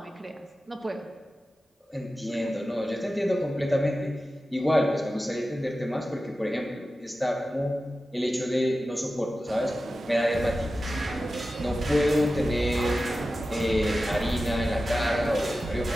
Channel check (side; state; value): both; normal; correlation 0.94